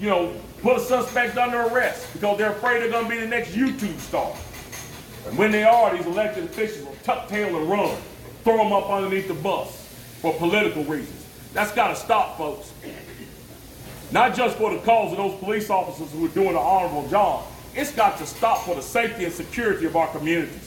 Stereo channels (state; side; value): identical; both; correlation 1.00